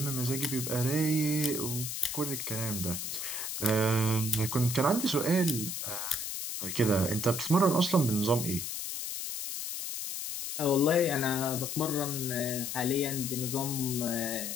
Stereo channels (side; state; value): left; noise; hiss, 4 dB below the sound